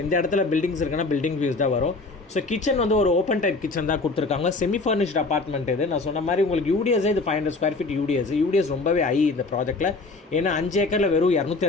இந்த இடத்துல பில்டிங்ஸ் இருக்குன்னா பில்டிங் வியூஸ் தான் வரும். ஸோ கிச்சன் வந்து ஒரு ஓப்பன் டைப் கிச்சன் தான் கொடுத்துருக்காங்க. செமி ஃபர்னிஷ்ட் அப்பார்ட்மெண்ட் இது. நான் சொன்ன மாதிரி உங்களுக்கு யூடிஎஸே இது 500 ஸ்கொயர் ஃபீட் யூடிஎஸ் ரொம்பவே ஹை இந்த ப்ராஜெக்ட்டில். ஏன்னா 5 ஏக்கரில் வெறும்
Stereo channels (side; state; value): right; quieter; 3.5 dB